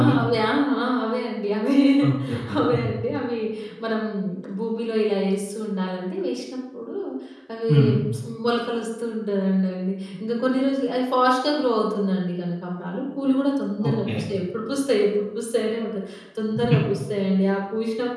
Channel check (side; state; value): both; identical; correlation 1.00